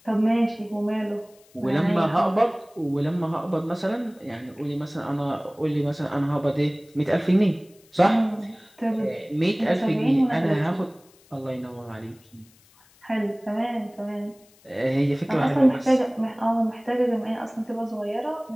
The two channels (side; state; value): left; noise; hiss, 29 dB below the sound